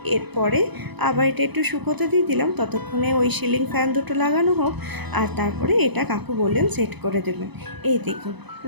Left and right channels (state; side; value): late; left; 0.99 ms